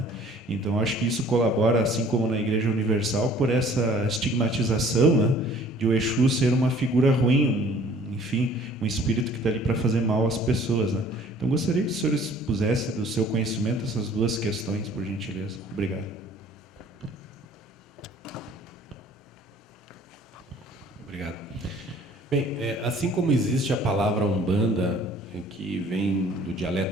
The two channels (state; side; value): normal; both; correlation 0.53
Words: Então acho que isso colabora, assim como na Igreja Universal, por essa estigmatização, né, de o Exu ser uma figura ruim, enfim, um espírito que está ali para fazer mal às pessoas, né? Então gostaria que o senhor expusesse do seu conhecimento essas duas questões, por gentileza. Obrigado. Obrigado. Bem, assim como existe a palavra Umbanda, que vem do